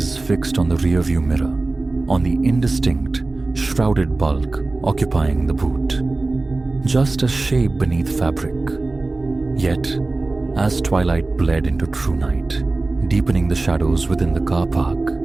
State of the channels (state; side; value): quieter; left; 3.3 dB